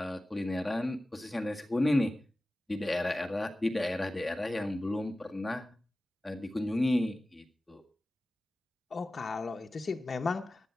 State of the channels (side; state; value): both; normal; correlation 0.96